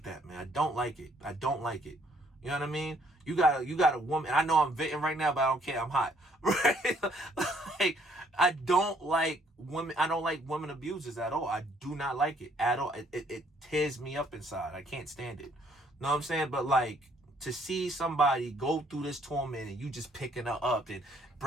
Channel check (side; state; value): both; normal; correlation 0.65